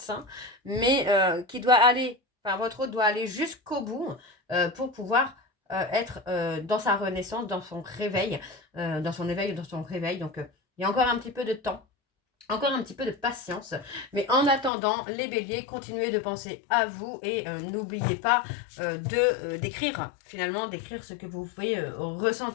mais qui doit aller, enfin votre hôte doit aller jusqu'au bout pour pouvoir être dans sa renaissance, dans son réveil, dans son éveil, dans son réveil. Donc il y a encore un petit peu de temps. Encore un petit peu de patience. Mais en attendant, les béliers, continuez de penser à vous et n'oubliez pas d'écrire, finalement, d'écrire ce que vous pouvez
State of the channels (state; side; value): drops out; right; at 14.7 s